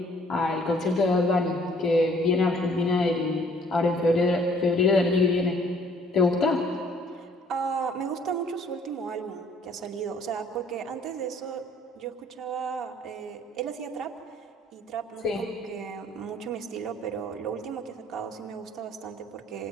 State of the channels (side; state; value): both; normal; correlation 0.59